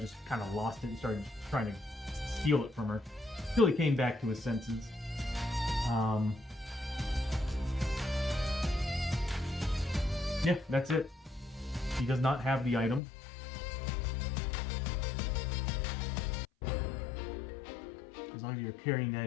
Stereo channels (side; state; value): right; drops out; at 13.0 s